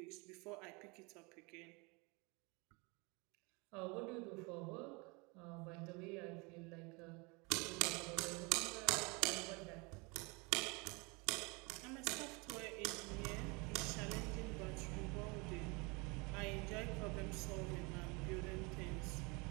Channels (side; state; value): left; quieter; 28.6 dB